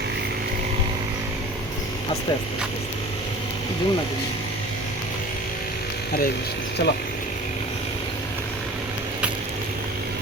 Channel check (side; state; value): both; normal; correlation 0.41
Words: আস্তে আস্তে জুম না। হরে কৃষ্ণ, চলো।